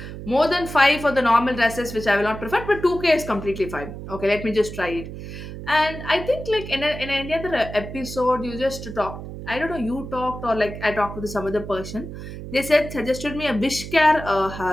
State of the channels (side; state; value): right; noise; hum, 10 dB below the sound